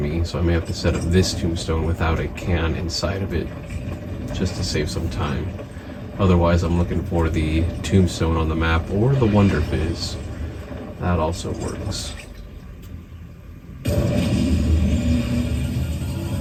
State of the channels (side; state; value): both; identical; correlation 1.00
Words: so I may have to set up this Tombstone without a can inside of it, just to save some time. Otherwise, I'm looking for the Tombstone on the map, or the Wonder Fizz. That also works.